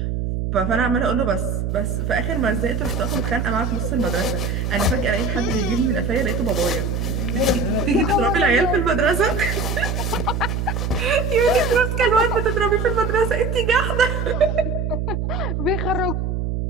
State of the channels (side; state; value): right; noise; hum, 1 dB below the sound